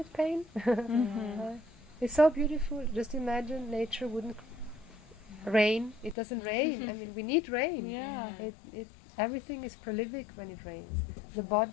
pain. It's so beautiful. Just imagine nature wouldn't rain. It doesn't rain. I mean, we need rain. Everything is prolific when it rains. The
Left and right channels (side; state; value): right; drops out; at 6.2 s